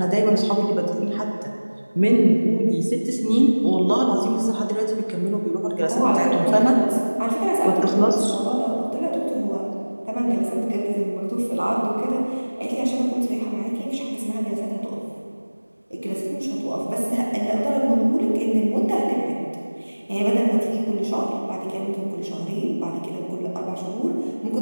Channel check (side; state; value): both; inverted; correlation -1.00